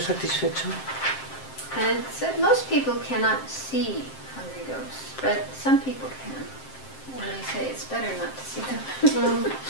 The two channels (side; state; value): right; late; 7.6 ms